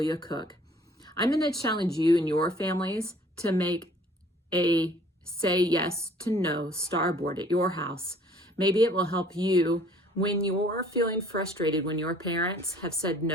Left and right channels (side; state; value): both; normal; correlation 0.55